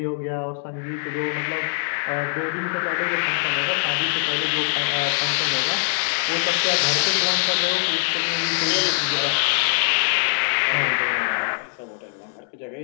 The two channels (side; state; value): right; silent; 64 dB below the other